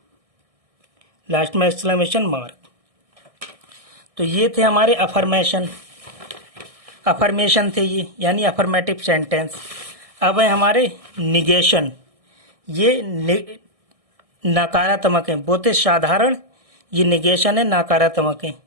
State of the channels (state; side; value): late; left; 1.6 ms